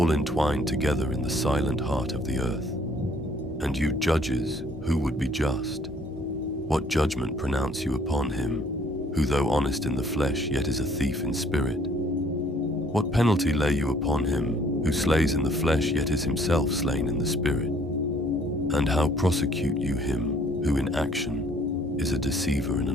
entwined together in the silent heart of the earth. And you judges, who would be just, what judgment pronounce you upon him, who though honest in the flesh yet is a thief in spirit? What penalty lay you upon him, who slays in the flesh yet is himself slain in the spirit? And how prosecute you him, who in action is a deceiver and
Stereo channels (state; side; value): normal; both; correlation 0.60